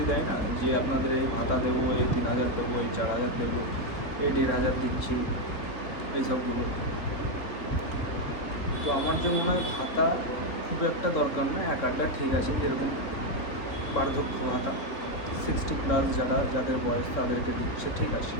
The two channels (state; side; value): late; right; 3.4 ms